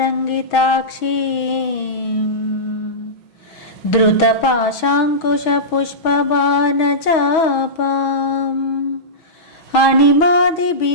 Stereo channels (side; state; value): right; late; 6.2 ms